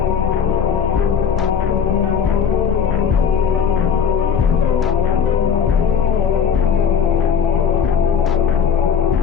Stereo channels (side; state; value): right; quieter; 7.2 dB